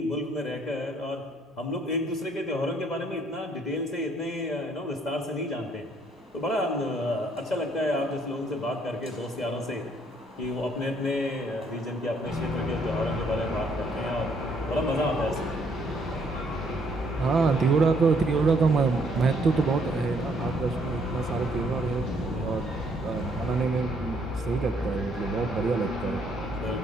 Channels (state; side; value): normal; both; correlation 0.67